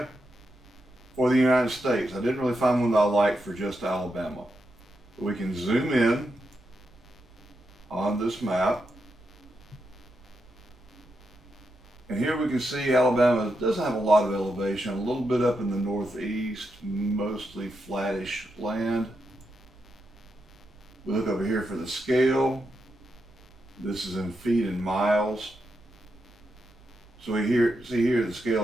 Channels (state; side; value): noise; right; hum, 27 dB below the sound